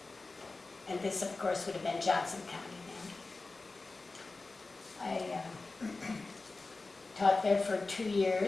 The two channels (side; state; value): right; quieter; 3.5 dB